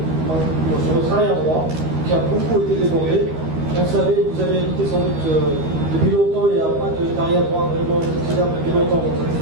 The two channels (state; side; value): late; left; 13 ms